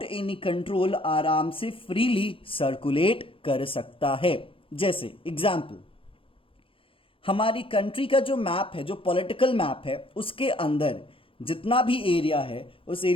एनी कंट्रोल आराम से फ्रीली सर्कुलेट कर सकता है। जैसे एग्जाम्पल, हमारी कंट्री का जो मैप है, जो पॉलिटिकल मैप है, उसके अंदर जितना भी एरिया है, उस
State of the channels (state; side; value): late; right; 0.26 ms